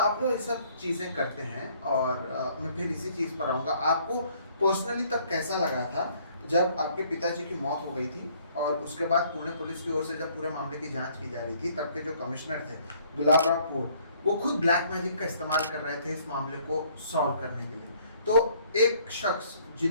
लोग ये सब चीजें करते हैं, और मैं फिर इसी चीज पर आऊंगा। आपको पर्सनली तब कैसा लगा था जब आपके पिताजी की मौत हो गई थी, और उसके बाद पुणे पुलिस की ओर से जब पूरे मामले की जांच की जा रही थी, तब के जो कमिश्नर थे गुलाबराव पोर, वो खुद ब्लैक मैजिक का इस्तेमाल कर रहे थे इस मामले को सॉल्व करने के लिए। तो एक शख्स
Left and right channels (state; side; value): inverted; both; correlation -0.62